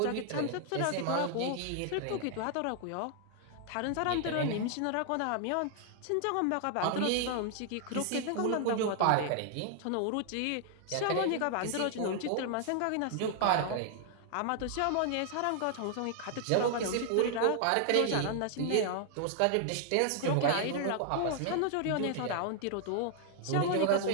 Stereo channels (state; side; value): different; both; correlation 0.00